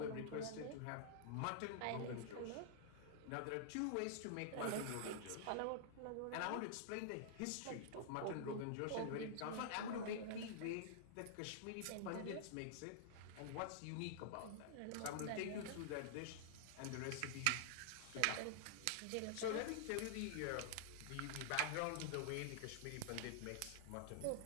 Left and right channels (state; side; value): different; both; correlation -0.01